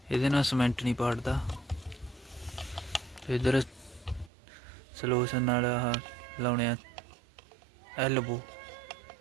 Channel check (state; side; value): drops out; left; at 4.3 s